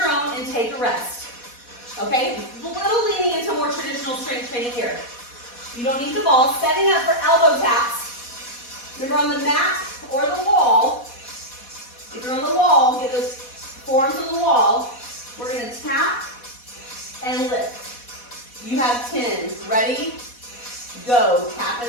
own and take a rest. Okay? A little leaning into more traditional strength training here. You don't need the ball. Setting up for elbow taps. Remember, on the mat or the wall, if you're on the wall, get those forearms on the wall. We're going to tap and lift. You have 10. Ready? Go. Tap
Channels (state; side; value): late; right; 4.1 ms